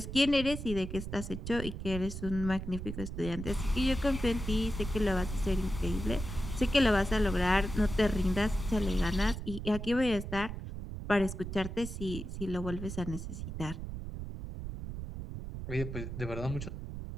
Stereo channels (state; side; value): noise; right; rumble, 7 dB below the sound